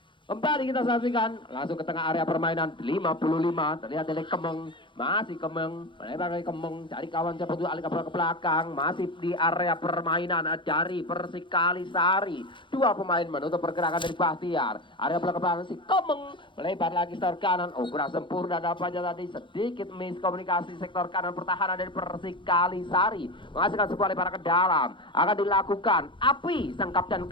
Kembali kita saksikan langsung ke tengah area permainan 55, terlihat dari Kemeng, masih Kemeng, melebar dari Kemeng, cari kawan cepat dulu alih ke belakang, masih di area permainan dari Persikalisari. Dua pemain menutup pergerakan dari Bahtiar, area belakang si Kemeng, melebar lagi sektor kanan, kurang sempurna dapatnya tadi, sedikit miskomunikasi sektor kanan pertahanan dari Persikalisari, menghasilkan sebuah lebaran ke dalam, akan dilakukan Api, sang kapten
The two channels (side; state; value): right; late; 0.24 ms